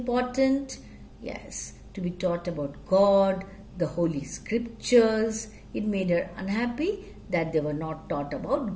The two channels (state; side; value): identical; both; correlation 1.00